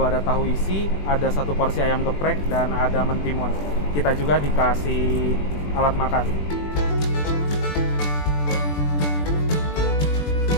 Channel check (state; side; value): late; right; 20 ms